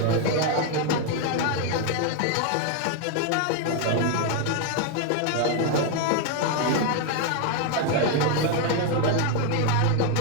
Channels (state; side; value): different; both; correlation 0.01